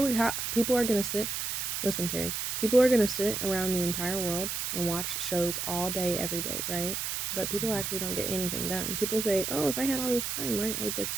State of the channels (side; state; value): right; noise; hiss, 2 dB below the sound